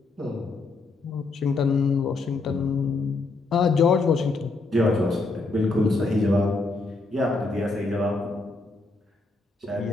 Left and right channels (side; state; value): right; quieter; 3.5 dB